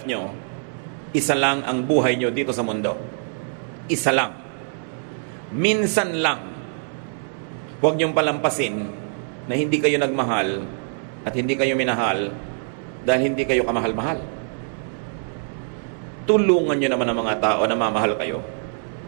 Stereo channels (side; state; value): left; silent; 63 dB below the other